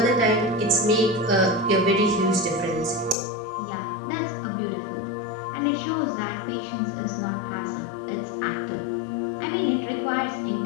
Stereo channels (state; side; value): drops out; right; at 3.2 s